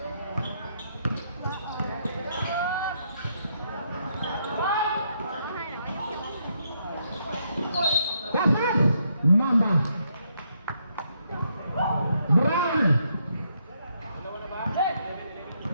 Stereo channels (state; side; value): inverted; both; correlation -0.76